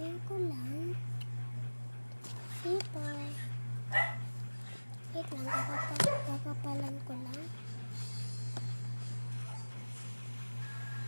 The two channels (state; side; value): inverted; both; correlation -1.00